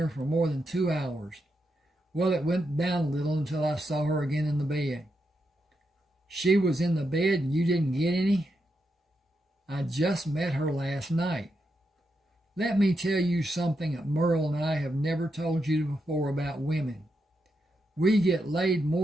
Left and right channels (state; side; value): normal; both; correlation 0.84